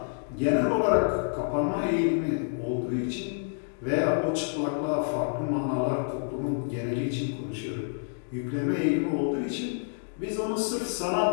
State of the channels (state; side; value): silent; right; digital silence